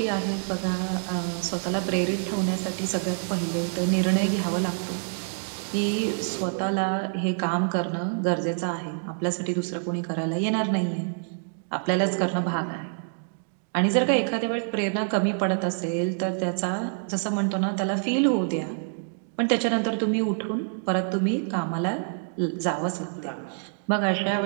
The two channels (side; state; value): left; silent; digital silence